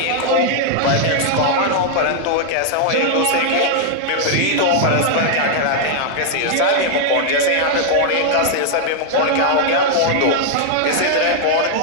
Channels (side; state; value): both; different; correlation 0.00